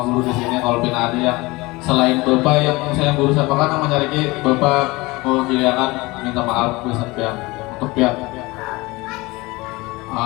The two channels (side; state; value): right; quieter; 22.5 dB